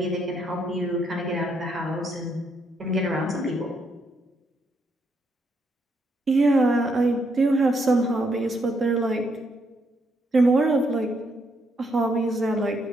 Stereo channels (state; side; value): normal; both; correlation 0.76